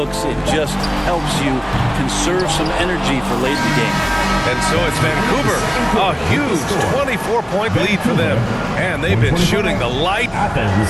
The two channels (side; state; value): both; identical; correlation 1.00